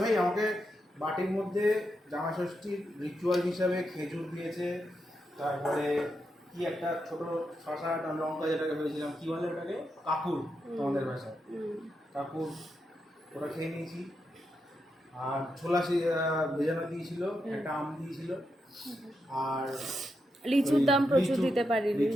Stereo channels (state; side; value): normal; both; correlation 0.85